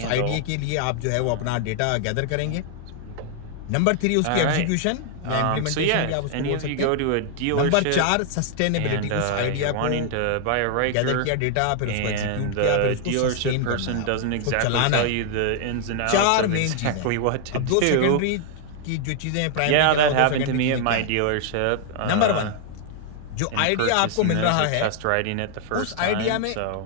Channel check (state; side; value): different; both; correlation 0.00